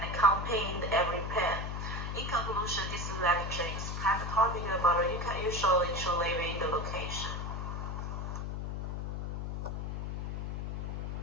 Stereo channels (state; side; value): noise; left; hum, 3 dB below the sound